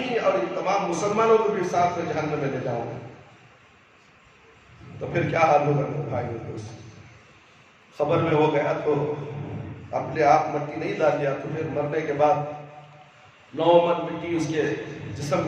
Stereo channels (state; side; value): identical; both; correlation 1.00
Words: اور ان تمام مسلمانوں کو بھی ساتھ میں جہنم میں لے جاؤں گا. تو پھر کیا حال ہوگا میرے بھائی دوست؟ خبر میں وہ گیا تو اپنے آپ مٹی نہیں ڈال لیا، تو پھر مرنے کے بعد 9 من مٹی اس کے جسم